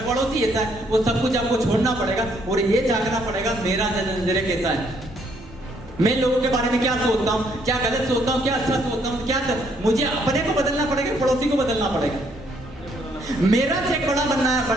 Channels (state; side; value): normal; both; correlation 0.69